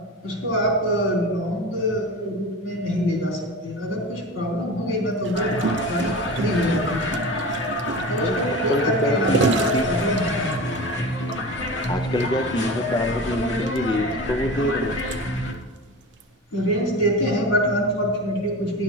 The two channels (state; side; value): normal; both; correlation 0.31